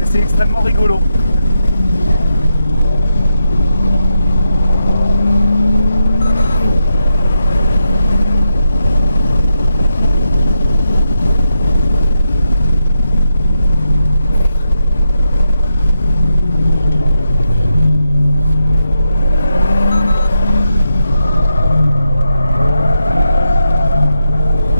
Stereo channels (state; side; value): inverted; both; correlation -0.85